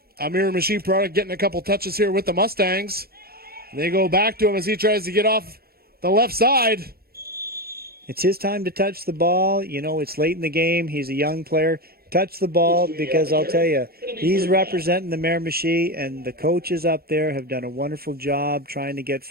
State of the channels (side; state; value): left; late; 0.44 ms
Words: a Miramichi product getting a couple touches here with the Mustangs. They go back to him as he tries to get off the left side. It's his time to touch the ball. You know, it's late in the game. He's a young player. Touch the ball, because I'll tell you, he's representing the Miramichi, and the coaches up there have done a wonderful job trying to get